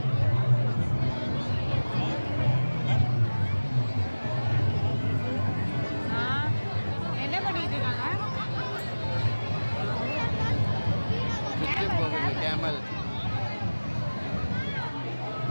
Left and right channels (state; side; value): inverted; both; correlation -1.00